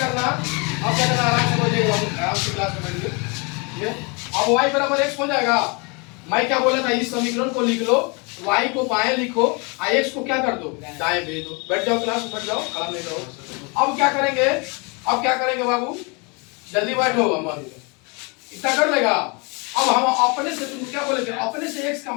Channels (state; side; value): quieter; right; 31.1 dB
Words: आराम से हो जाएगा, आराम से क्लास में बैठिए। अब y बराबर x हो जाएगा। मैं क्या बोला था, इस समीकरण को लिख लो, y को बाएं लिखो और x को क्या कर दो, दाएं भेज दो। बैठ जाओ क्लास में, बैठ जाओ, आराम नहीं करो। अब क्या करेंगे बाबू, जल्दी बैठो, हम इतना कर लेगा। अब हम अपने से, तुम क्या बोले थे, अपने से x का